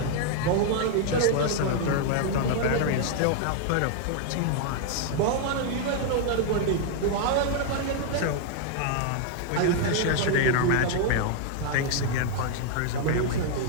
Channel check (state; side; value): different; both; correlation 0.00